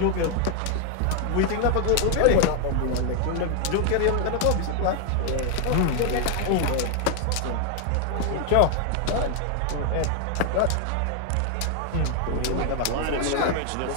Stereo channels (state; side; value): different; both; correlation 0.00